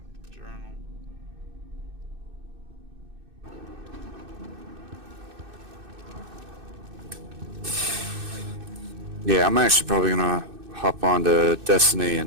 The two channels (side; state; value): left; late; 2.6 ms